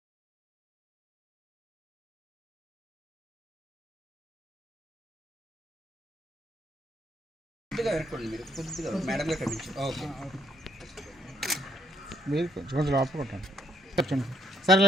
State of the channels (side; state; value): both; normal; correlation 0.70